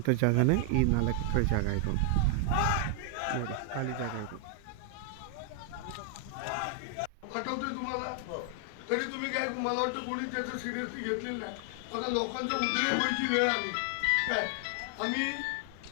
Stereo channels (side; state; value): both; different; correlation 0.00